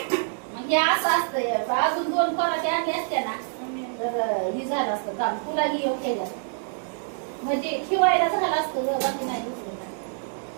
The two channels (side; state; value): left; silent; digital silence